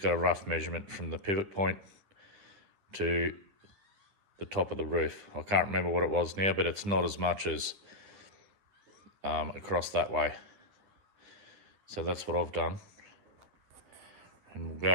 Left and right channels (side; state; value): left; late; 10 ms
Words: got a rough measurement from the pivot point to the top of the roof. I can't remember what it was now, but it's not as much as across that way. So that's what I've done, and we'll